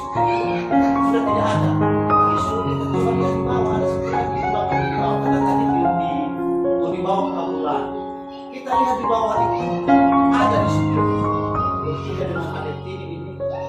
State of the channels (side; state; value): both; identical; correlation 1.00